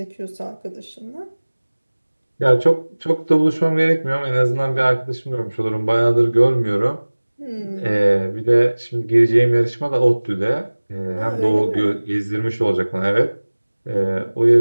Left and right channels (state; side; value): inverted; both; correlation -1.00